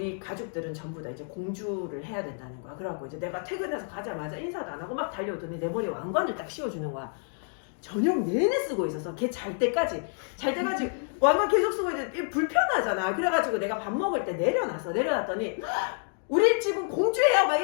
가족들은 전부 다 이제 공주를 해야 된다는 거야. 그래갖고 이제 내가 퇴근해서 가자마자 인사도 안 하고 막 달려오더니 내 머리에 왕관을 딱 씌워주는 거야. 저녁 내내 쓰고 있어서 걔 잘 때까지 왕관 계속 쓰고 있는데 불편하잖아. 그래가지고 내가 밥 먹을 때 내려놨더니 우리 집은 공주예요 막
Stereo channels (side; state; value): right; silent; 59 dB below the other